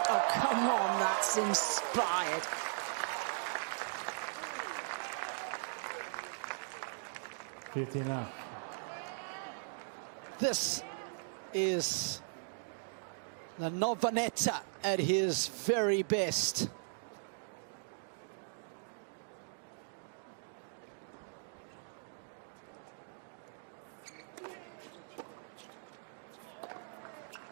Oh, come on, that's inspired. This is the Navone at his very best.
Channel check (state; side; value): silent; left; digital silence